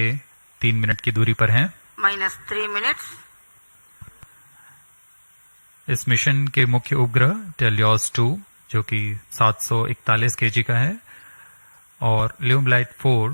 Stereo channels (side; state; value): both; inverted; correlation -1.00